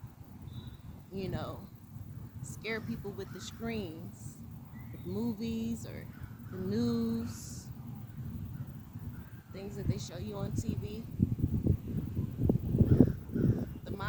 scare people with the screens, with movies or the news, things that they show you on TV. The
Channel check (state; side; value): identical; both; correlation 1.00